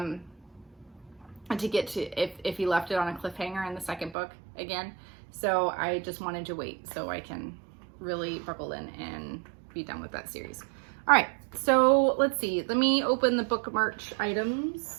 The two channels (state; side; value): drops out; left; at 4.2 s